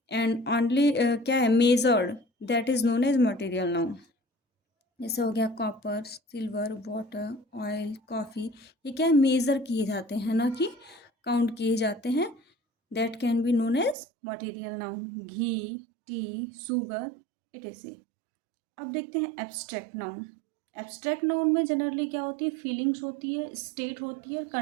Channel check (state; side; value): drops out; left; at 14.0 s